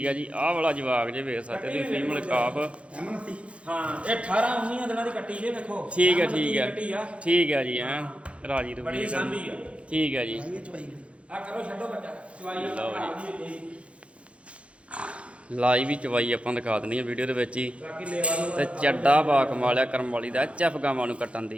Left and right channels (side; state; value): left; late; 0.061 ms